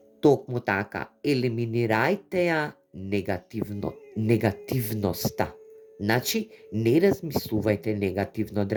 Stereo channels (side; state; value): both; identical; correlation 1.00